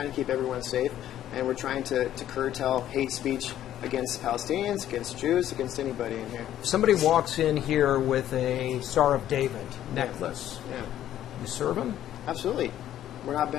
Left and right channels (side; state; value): right; quieter; 11.9 dB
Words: to keep everyone safe, and we're trying to curtail hate speech against Palestinians, against Jews, against anybody in here. Somebody walks in here with a Star of David necklace. Yeah. You serve him? Absolutely. We're not